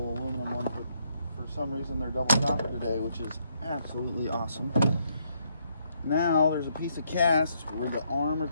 aluminum ones, but for some reason they're double copper today, which is absolutely awesome. Now there's a piece of cast where the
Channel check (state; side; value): inverted; both; correlation -0.74